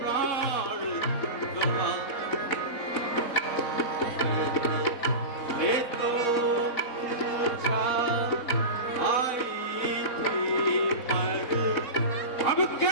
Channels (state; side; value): late; right; 3.7 ms